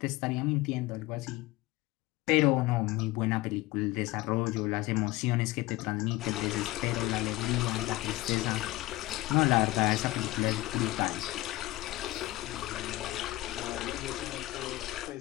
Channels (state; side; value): quieter; right; 18.8 dB